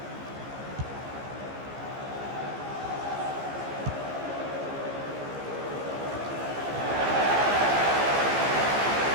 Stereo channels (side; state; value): left; late; 15 ms